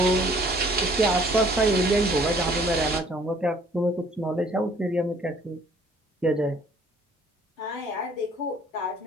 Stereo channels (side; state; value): both; normal; correlation 0.57